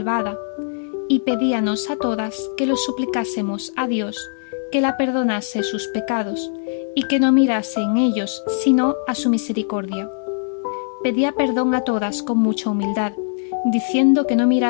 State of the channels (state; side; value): silent; right; digital silence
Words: y pedíanos a todas que lo suplicásemos a Dios que la perdonase sus pecados y que no mirase en ellos sino a su misericordia. Pedía perdón a todas con mucha humildad, diciendo que no